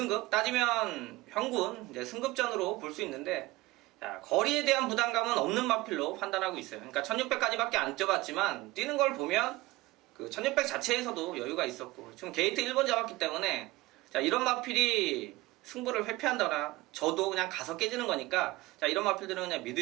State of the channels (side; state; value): left; quieter; 20.0 dB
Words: 따지면 현군 이제 승급전으로 볼 수 있는데 자, 거리에 대한 부담감은 없는 마필로 판단하고 있어요. 그러니까 1600까지밖에 안 뛰어봤지만 뛰는 걸 보면 그 1600 자체에서도 여유가 있었고 지금 게이트 1번 잡았기 때문에 자, 이런 마필이 승부를 회피한다거나 저도 그냥 가서 깨지는 거니까 자, 이런 마필들은 그냥